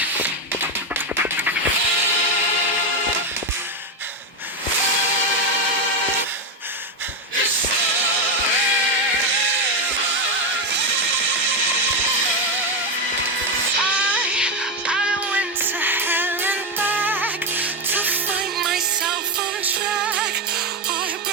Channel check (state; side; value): normal; both; correlation 0.09